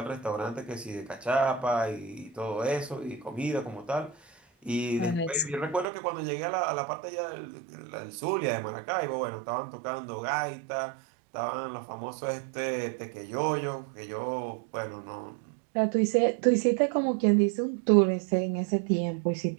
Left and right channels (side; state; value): left; drops out; at 5.9 s